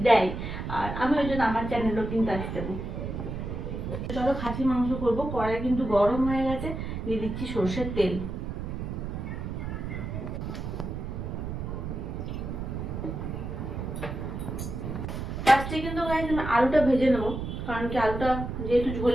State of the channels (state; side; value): noise; right; rumble, 5 dB below the sound